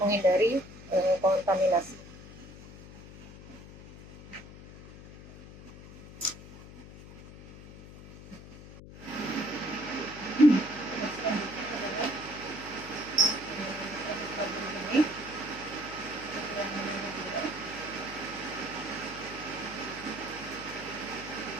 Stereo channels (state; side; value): noise; left; hum, 16 dB below the sound